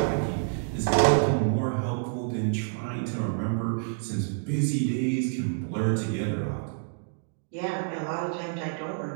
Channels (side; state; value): left; silent; digital silence